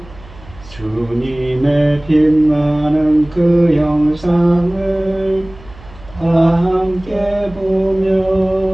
주님의 빛나는 그 영상을 다 함께 보며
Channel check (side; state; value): right; noise; hum, 21 dB below the sound